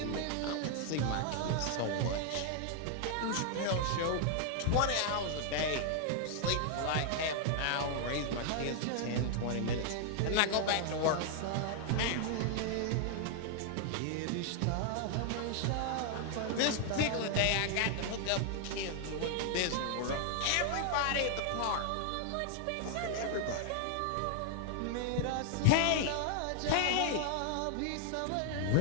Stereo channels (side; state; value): both; different; correlation 0.00